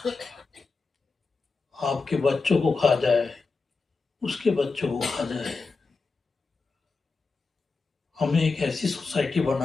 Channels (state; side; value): quieter; right; 4.2 dB